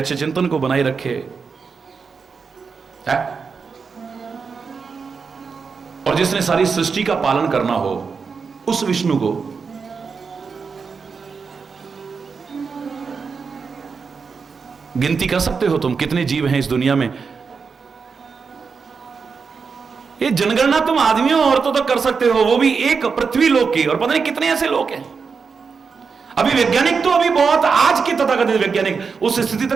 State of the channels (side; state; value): left; quieter; 5.4 dB